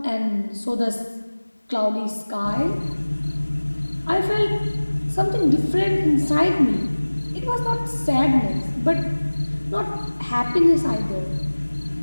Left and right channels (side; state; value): both; inverted; correlation -1.00